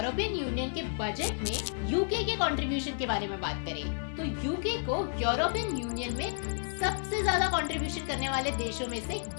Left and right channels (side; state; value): right; silent; 57 dB below the other